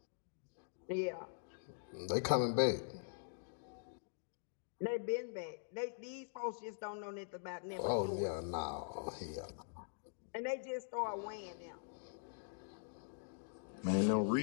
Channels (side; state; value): right; silent; digital silence